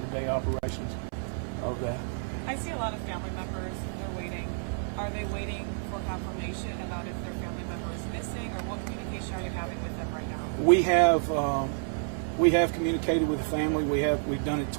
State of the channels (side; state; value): left; silent; 56 dB below the other